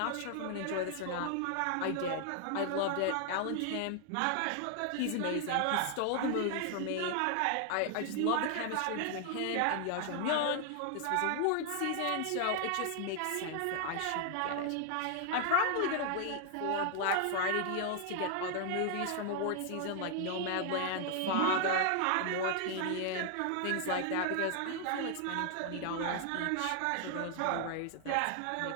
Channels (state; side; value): different; both; correlation 0.00